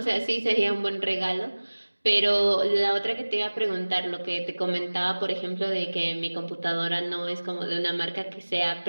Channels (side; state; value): both; inverted; correlation -1.00